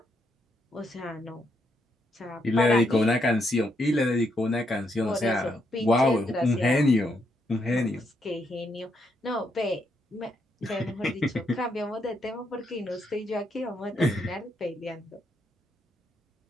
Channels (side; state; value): both; normal; correlation 0.77